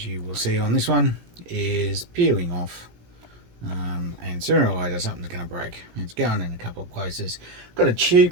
you will see on this one, is peeling off. And sooner or later something's going to break. It's going in a couple of places. Got a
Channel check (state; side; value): late; left; 17 ms